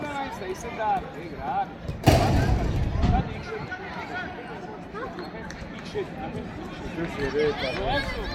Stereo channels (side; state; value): both; identical; correlation 1.00